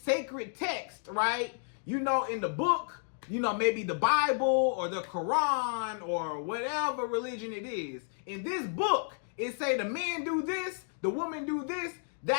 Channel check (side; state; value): right; silent; digital silence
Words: text, right? In the book, maybe the Bible or the Quran or whatever religion it is. In this book, it say the man do this, the woman do this,